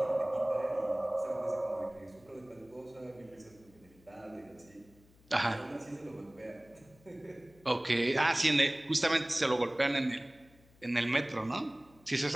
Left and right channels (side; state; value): left; noise; hum, 28 dB below the sound